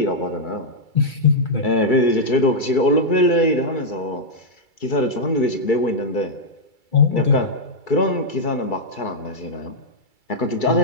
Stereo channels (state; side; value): late; right; 2.3 ms